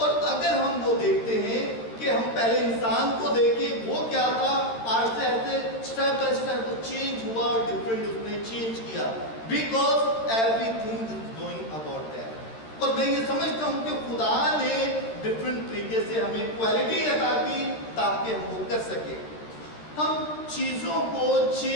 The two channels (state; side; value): late; right; 13 ms